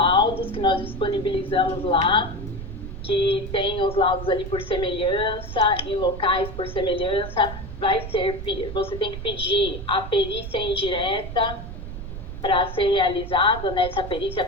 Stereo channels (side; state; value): right; noise; rumble, 9 dB below the sound